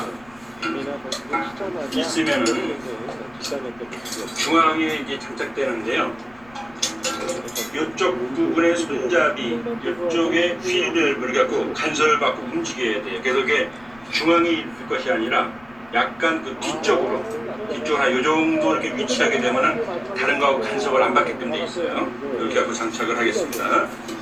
있으면은 중앙에 이제 장착되는데요. 이쪽 부분의 손잡이, 이쪽에 휠을 갖고 간섭을 받고 움직여야 돼요. 그래서 이게 중앙에 있을 것이 아니라 약간 그 뒤쪽으로 한 요 정도 이렇게 위치하게 되면은 다른 거하고 간섭을 안 받게끔 돼 있어요. 이렇게 하고 장착을 하겠습니다.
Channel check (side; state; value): left; noise; rumble, 26 dB below the sound